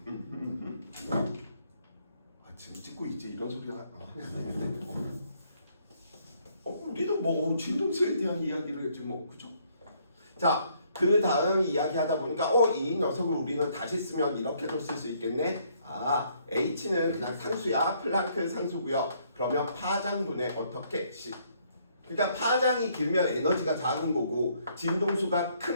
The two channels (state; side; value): inverted; both; correlation -0.68